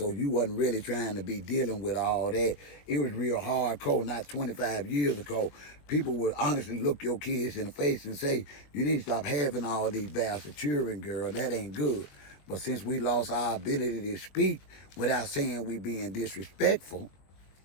you wasn't really trying to be dealing with all that. It was real hardcore, not 25 years ago. People would honestly look your kids in the face and say, you need to stop having all these bastard children, girl. That ain't good. But since we lost our ability to speak without saying we being disrespectful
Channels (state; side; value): late; right; 21 ms